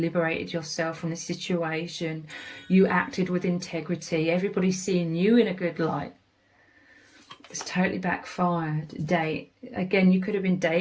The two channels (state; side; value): identical; both; correlation 1.00